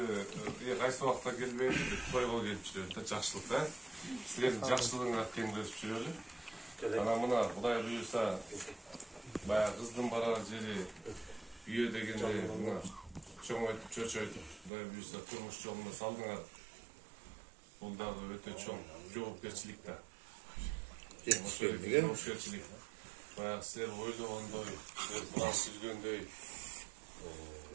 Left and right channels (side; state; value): left; drops out; at 14.7 s